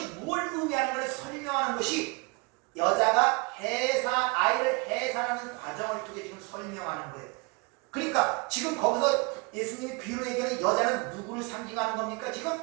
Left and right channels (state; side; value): quieter; left; 28.9 dB